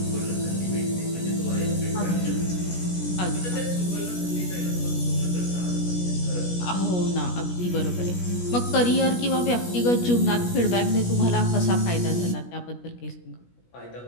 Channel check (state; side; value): late; right; 17 ms